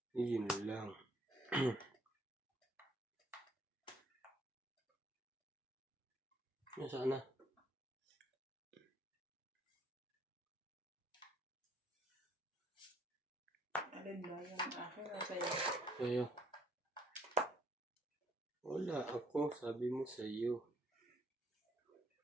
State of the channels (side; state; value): both; normal; correlation 0.66